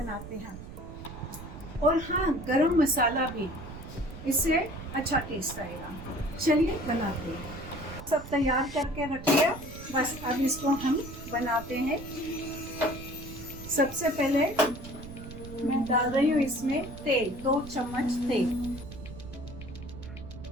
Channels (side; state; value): right; noise; rumble, 13 dB below the sound